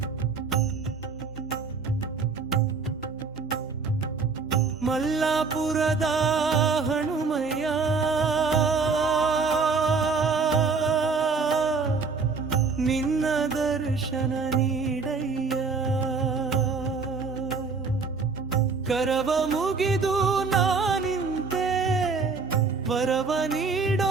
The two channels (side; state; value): left; quieter; 4.7 dB